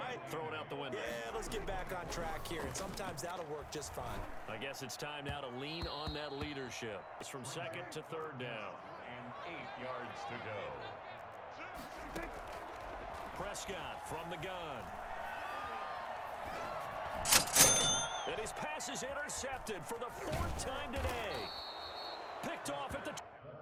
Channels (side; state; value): both; identical; correlation 1.00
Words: Throw it out the window. Yeah, let's get back on track here. And sometimes that'll work just fine. I guess it's time now to lean on that leadership. It's from 2nd to 3rd down. And 8 yards to go. Prescott from the gun. And his pass is intercepted for the 4th time today.